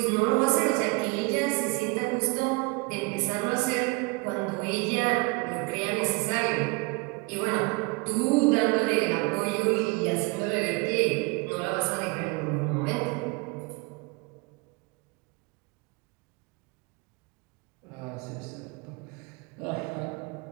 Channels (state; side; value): quieter; left; 28.5 dB